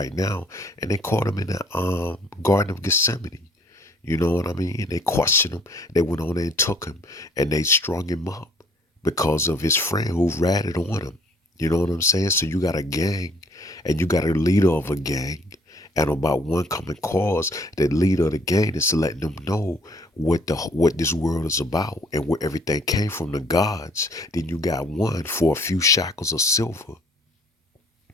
now. And they caught him in the Garden of Gethsemane. You know what I mean? They questioned him. They went on there and took him. And they strung him up because of his friend who ratted on him. You know what I'm saying? So you got a gang and you got a leader of a gang. And about one common cause, the leader of the gang is letting them know what this world is about and where everything came from, the gods. Then you got one for a few shackles of silver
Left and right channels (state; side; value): normal; both; correlation 0.60